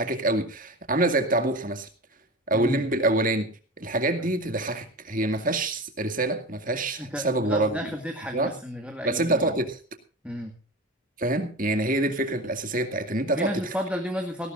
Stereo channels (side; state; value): both; normal; correlation 0.30